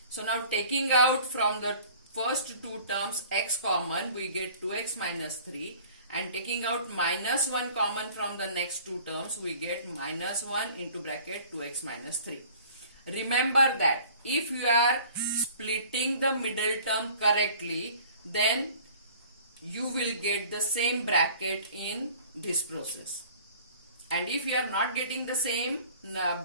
So now taking out from the first two terms x common, we get 2x minus 3, and taking out minus 1 common from the next two terms, we get minus 1 into bracket 2x minus 3. Remember that if you are splitting the middle term correctly, then you will get the same bracket in this process. And if you are not getting the same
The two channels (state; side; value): inverted; both; correlation -0.49